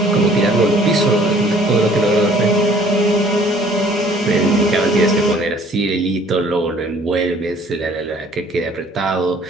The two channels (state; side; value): normal; both; correlation 0.56